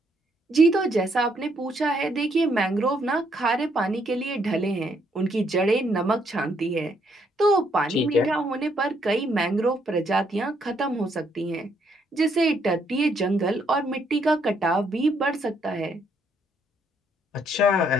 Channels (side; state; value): both; normal; correlation 0.72